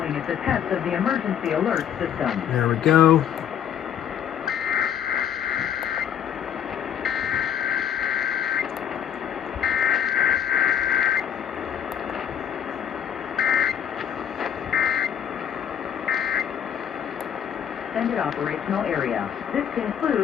is a test of the emergency alert system. There we go. Extended operational area. This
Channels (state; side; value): quieter; right; 9.2 dB